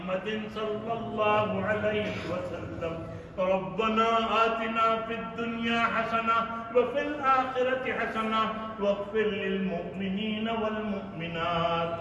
صلى الله عليه وسلم. ربنا آتنا في الدنيا حسنة وفي الآخرة حسنة واغفر للمؤمنين والمؤمنات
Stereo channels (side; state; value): both; identical; correlation 1.00